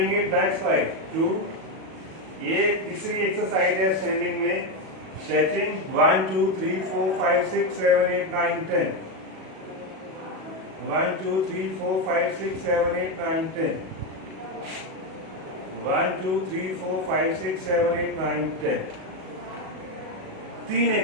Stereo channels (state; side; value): late; left; 37 ms